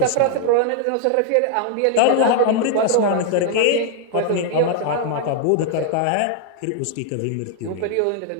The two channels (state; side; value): different; both; correlation 0.00